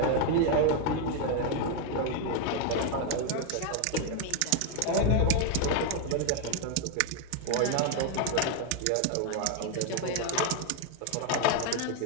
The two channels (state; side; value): different; both; correlation 0.01